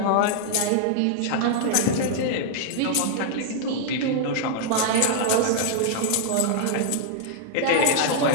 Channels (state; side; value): different; both; correlation -0.01